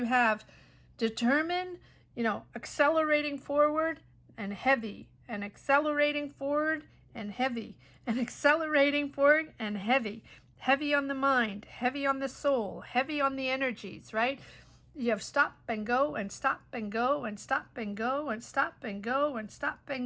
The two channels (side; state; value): both; identical; correlation 1.00